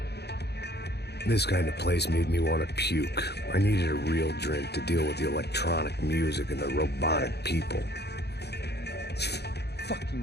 This kind of place made me want to puke. I needed a real drink to deal with the electronic music and the robotic people. Fucking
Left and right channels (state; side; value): late; right; 0.48 ms